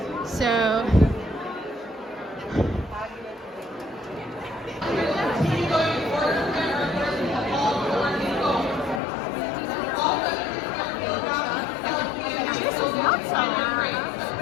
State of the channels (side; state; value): right; drops out; at 9.0 s